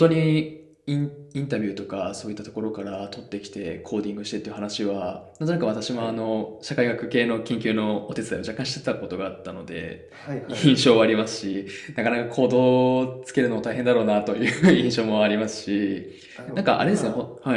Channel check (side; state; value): both; identical; correlation 1.00